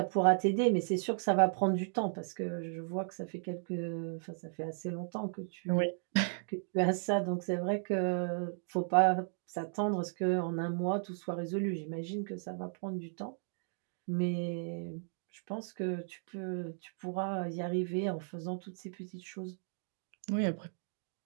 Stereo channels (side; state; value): left; silent; digital silence